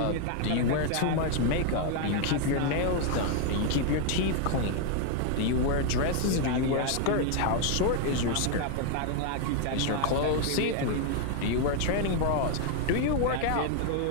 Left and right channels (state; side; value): different; both; correlation 0.00